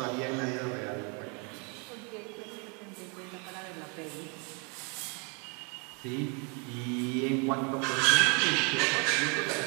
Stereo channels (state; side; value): quieter; left; 34.9 dB